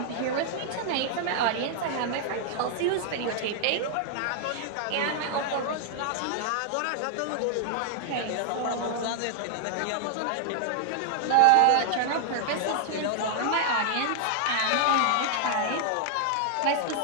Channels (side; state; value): both; different; correlation -0.01